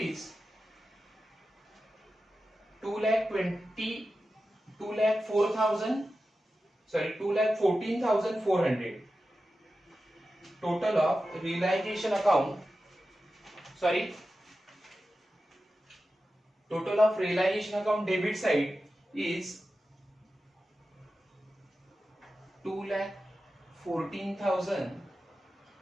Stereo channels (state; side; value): normal; both; correlation 0.93